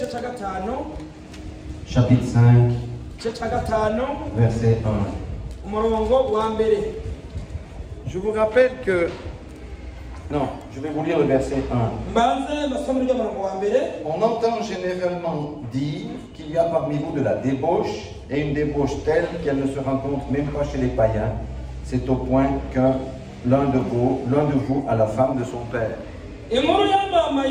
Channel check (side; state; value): both; identical; correlation 1.00